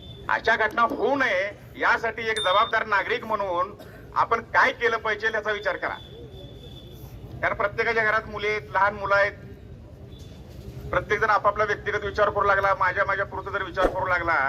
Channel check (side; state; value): both; identical; correlation 1.00